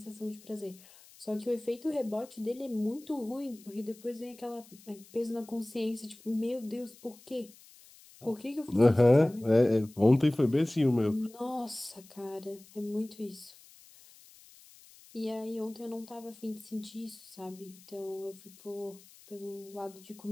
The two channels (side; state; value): left; noise; hiss, 23 dB below the sound